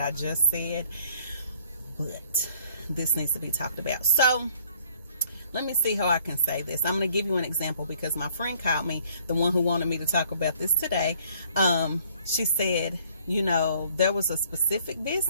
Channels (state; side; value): inverted; both; correlation -0.60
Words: I just said, but this needs to be talked about. So let me see how I can say this. I'm going to give you an example because my friend called me, the one who wanted me to talk about this today. She said, there was a specific